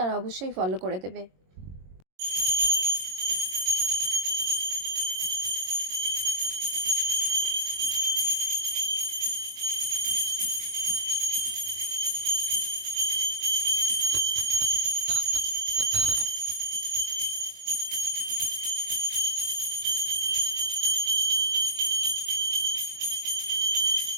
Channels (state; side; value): late; left; 22 ms